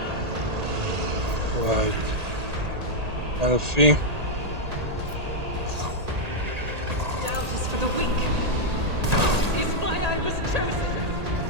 Right. Elfie. Doubt is for the weak. Is why I was chosen.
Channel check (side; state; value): left; late; 1.8 ms